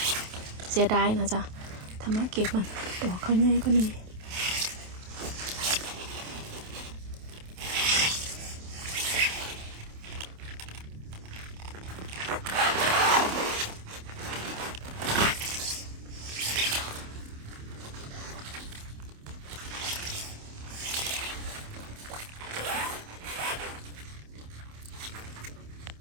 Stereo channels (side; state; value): left; late; 27 ms